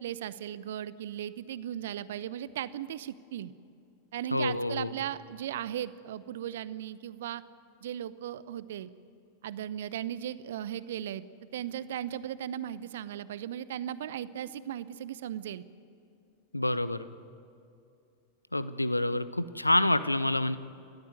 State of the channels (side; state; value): both; inverted; correlation -0.78